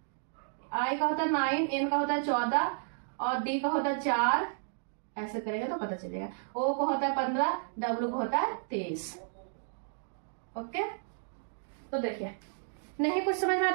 आई का होता है 9, एन का होता है 14 और डी का होता है 4, ऐसे करेंगे तो पता चलेगा। ओ को होता है 15, डब्ल्यू को होता है 23। ओके तो देखिए नहीं कुछ समझ में आया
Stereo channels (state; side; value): silent; left; digital silence